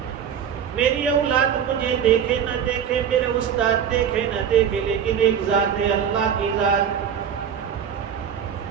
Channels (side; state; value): left; quieter; 8.3 dB